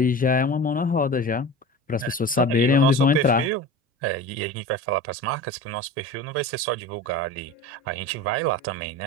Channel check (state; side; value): normal; both; correlation 0.33